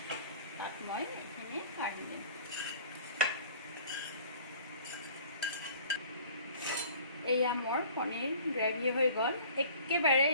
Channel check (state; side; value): inverted; both; correlation -0.49